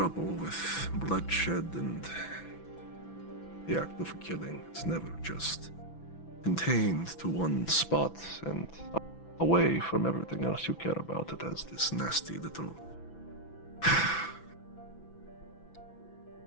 with bloodshed and the act of killing. It's never just contained to one spot and away from everything else you care about. It has this nasty little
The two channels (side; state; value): right; late; 6.0 ms